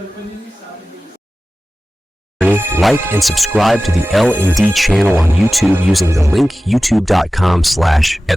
pwede nyo sabi nyo. Like and subscribe to the L&D channel on YouTube using the link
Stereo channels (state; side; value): normal; both; correlation 0.96